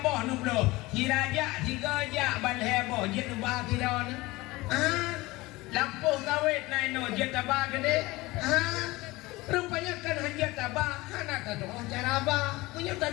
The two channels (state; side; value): quieter; right; 20.9 dB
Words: nublo, hiraja tiga jak bal heboh, jet ubah kira ni. Lampuh kawit naik no jet tabah gede. Rupanya kan hanya tabah, anak tak tahu cara apa, punya